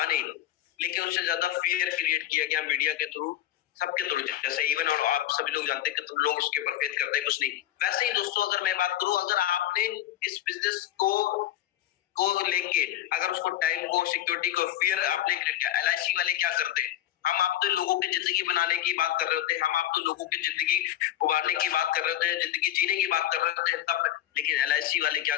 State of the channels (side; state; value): right; quieter; 12.6 dB